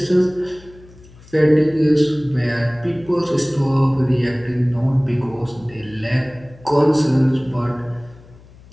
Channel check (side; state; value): left; noise; hum, 23 dB below the sound